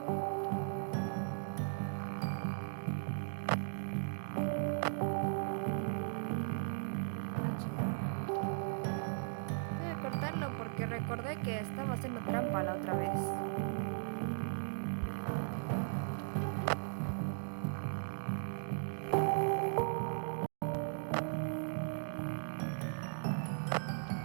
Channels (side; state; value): left; silent; digital silence